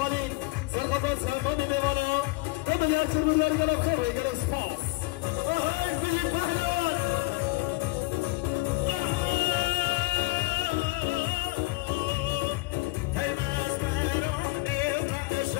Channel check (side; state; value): right; quieter; 22.6 dB